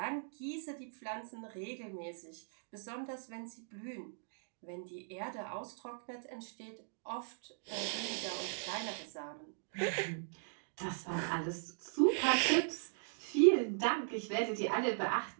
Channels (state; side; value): silent; left; digital silence